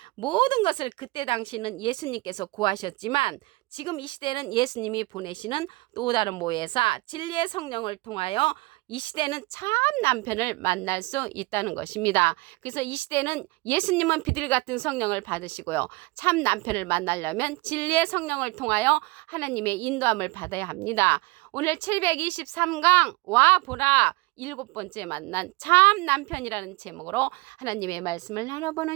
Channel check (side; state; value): left; quieter; 23.6 dB